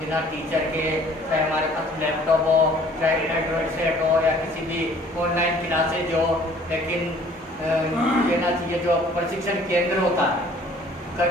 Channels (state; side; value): normal; both; correlation 0.55